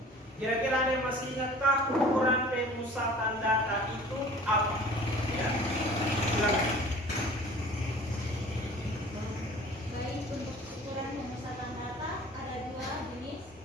Kira-kira ada yang masih ingatkah ukuran pemusatan data itu apa? Ya, silakan. Baik, untuk ukuran pemusatan data ada dua jenis,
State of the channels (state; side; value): normal; both; correlation 0.46